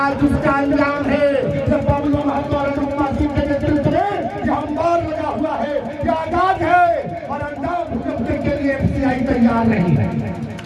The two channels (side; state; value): both; identical; correlation 1.00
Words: उसका अंजाम है जब बबलू महतो और अनुपमा सिंह के नेतृत्व में जो अंबार लगा हुआ है, जो आजाद है, और अंजाम भुगतने के लिए एफसीआई तैयार नहीं है।